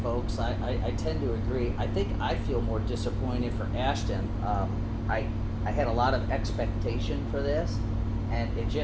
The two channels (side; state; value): both; identical; correlation 1.00